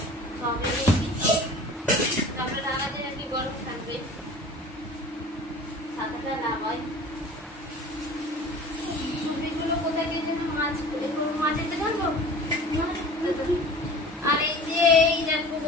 চপ এনেছি, চপের আলাদা আর কি গরম থাকবে, ছাতাটা লাগাই। চুড়িগুলো কোথায় গিয়েছে? মাঝেতে ঢালবো। আর এই যে এই দেখো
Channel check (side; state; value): both; normal; correlation 0.41